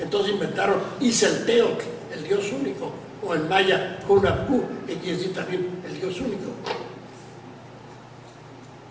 inventaron Izelteotl, el Dios único, o en maya Hunapku, que quiere decir también el Dios único.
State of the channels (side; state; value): both; identical; correlation 1.00